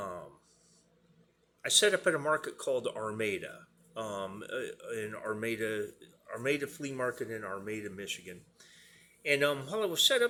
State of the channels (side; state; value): both; identical; correlation 1.00